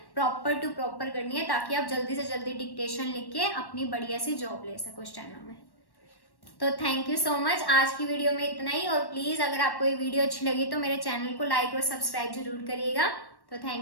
प्रॉपर टू प्रॉपर करनी है, ताकि आप जल्दी से जल्दी डिक्टेशन लिख के अपनी बढ़िया सी जॉब ले सको स्टेनो में। तो थैंक यू सो मच, आज की वीडियो में इतना ही। और प्लीज अगर आपको ये वीडियो अच्छी लगी तो मेरे चैनल को लाइक और सब्सक्राइब जरूर करिएगा। तो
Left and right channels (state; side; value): late; right; 1.1 ms